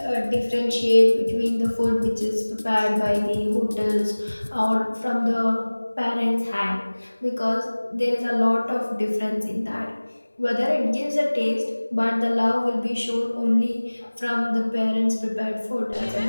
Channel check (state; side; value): inverted; both; correlation -1.00